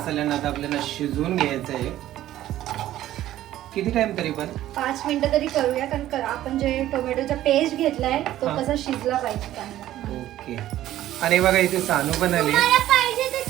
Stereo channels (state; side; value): quieter; left; 13.6 dB